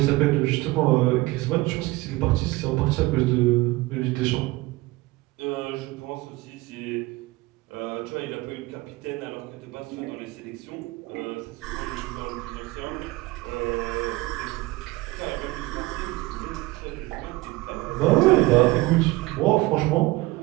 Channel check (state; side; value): quieter; left; 20.5 dB